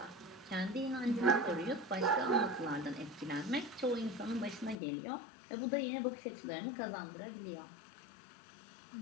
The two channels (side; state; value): right; drops out; at 4.8 s